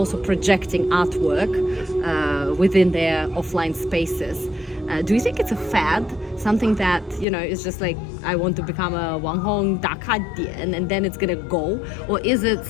projecting artwork within their offline spaces. Do you think it's a fad? Something that, is just like, I want to become a Wang Hong 打卡点 and then it's gonna go? Or is it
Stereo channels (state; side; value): drops out; right; at 7.2 s